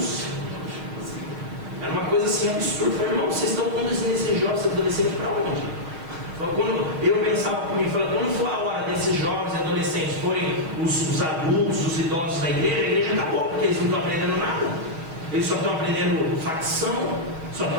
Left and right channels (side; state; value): left; late; 6.2 ms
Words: Era uma coisa assim absurda. Eu falei, irmão, vocês estão conduzindo esses jovens e adolescentes para onde? Quando eu pensava comigo, quando for a hora desses jovens e adolescentes forem os adultos, os idosos da igreja, a igreja acabou, porque eles não estão aprendendo nada. Eles só estão aprendendo facção, só